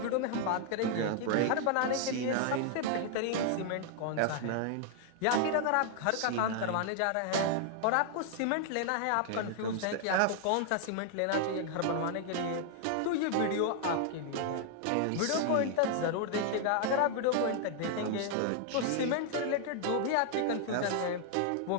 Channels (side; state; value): both; different; correlation 0.00